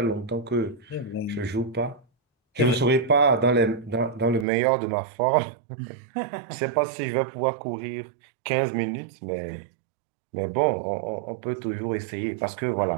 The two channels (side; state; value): left; drops out; at 4.5 s